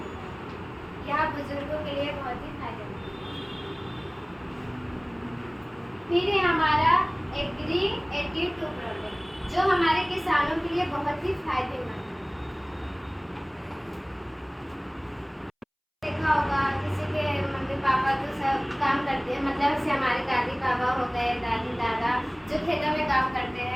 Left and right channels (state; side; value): identical; both; correlation 1.00